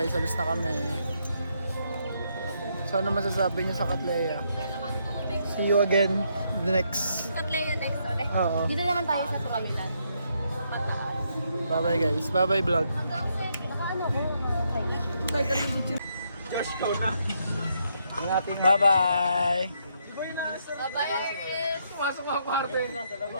Alis na kami. So, ano masasabi niyo sa Katleya? See you again the next. Katleya next ulit. Oo. Dito naman tayo sa Tukamilan. Bye-bye guys. Bye-bye vlog. Bye-bye.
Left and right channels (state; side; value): inverted; both; correlation -0.76